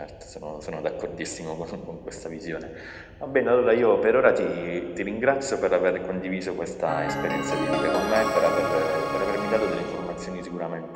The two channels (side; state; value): both; identical; correlation 1.00